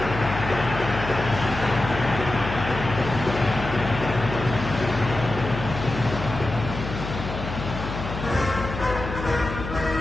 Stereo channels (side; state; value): left; noise; hum, 7 dB below the sound